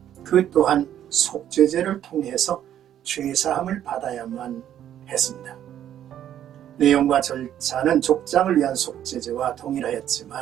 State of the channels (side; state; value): left; quieter; 10.8 dB